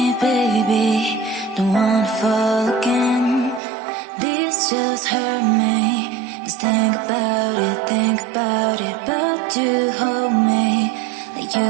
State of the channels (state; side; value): drops out; left; at 3.6 s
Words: baby, don't wanna fall again. This just hurt me. Just think about it, but you hold me like you